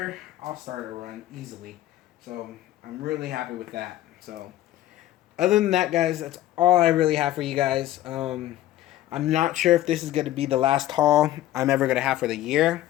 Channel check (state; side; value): quieter; right; 14.0 dB